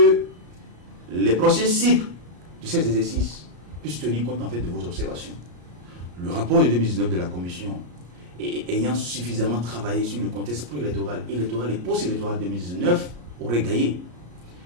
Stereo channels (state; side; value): late; left; 34 ms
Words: les prochains cycles de ces exercices puissent tenir compte en fait de vos observations. Le rapport de 2019 de la Commission, ayant suffisamment travaillé sur le contexte préélectoral, électoral et post-électoral 2019, aurait gagné